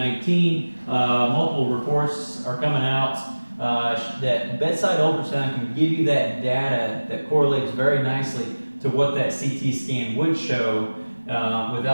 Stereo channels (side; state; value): both; inverted; correlation -1.00